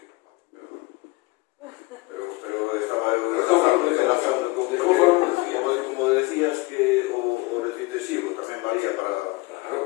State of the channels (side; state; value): right; quieter; 23.0 dB